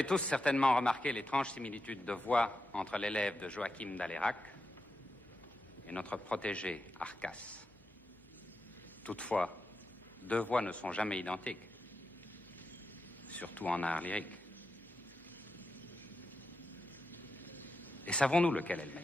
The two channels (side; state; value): both; normal; correlation 0.88